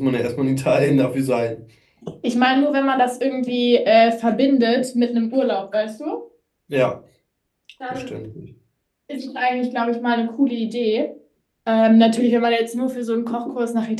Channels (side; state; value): both; identical; correlation 1.00